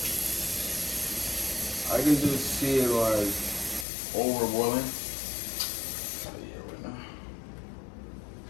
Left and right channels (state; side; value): drops out; right; at 3.9 s